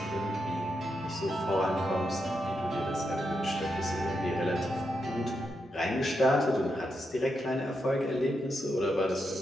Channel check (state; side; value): normal; both; correlation 0.84